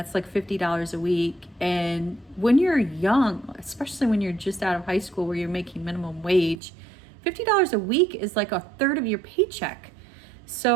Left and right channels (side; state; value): left; drops out; at 6.6 s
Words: like $50 a week. And when you're young, especially when you're just out of high school where you're making minimum wage, $50 a week is like a third of your paycheck.